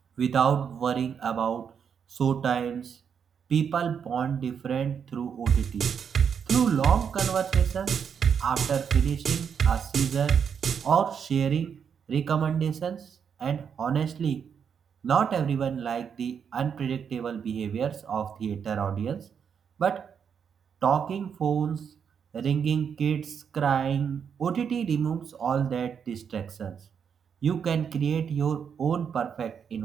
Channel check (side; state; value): left; quieter; 7.2 dB